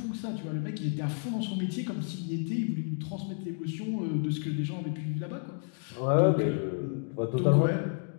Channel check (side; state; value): right; silent; 57 dB below the other